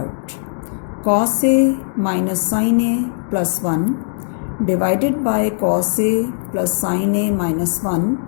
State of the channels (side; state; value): right; silent; digital silence